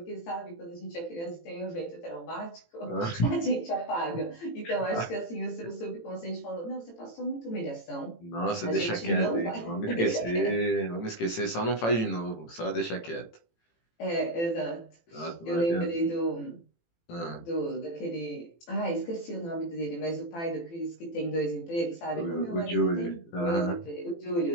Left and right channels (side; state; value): right; late; 18 ms